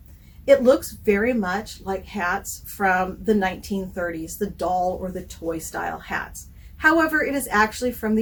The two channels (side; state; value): both; identical; correlation 1.00